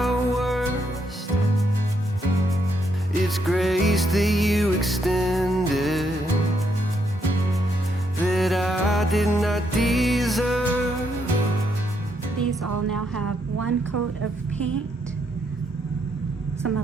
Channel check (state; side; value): normal; both; correlation 0.76